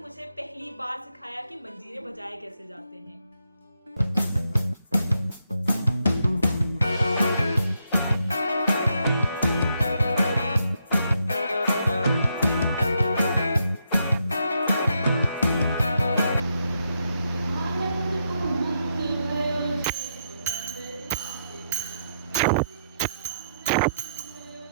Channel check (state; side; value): inverted; both; correlation -0.80